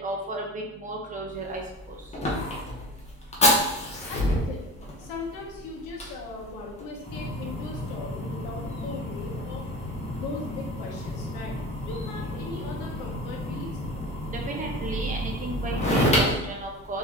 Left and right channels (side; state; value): both; normal; correlation 0.32